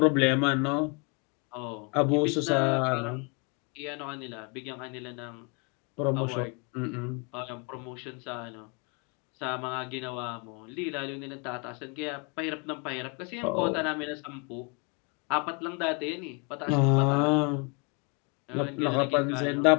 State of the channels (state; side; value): quieter; right; 34.1 dB